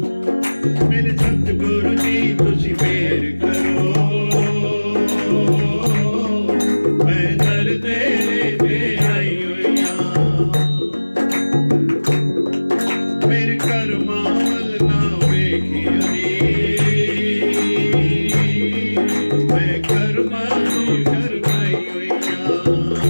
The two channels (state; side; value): inverted; both; correlation -1.00